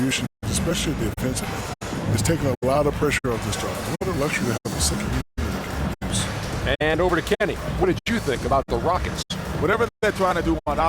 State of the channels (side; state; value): both; identical; correlation 1.00